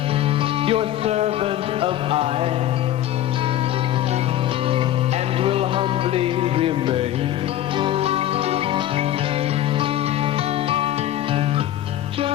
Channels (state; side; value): quieter; right; 12.7 dB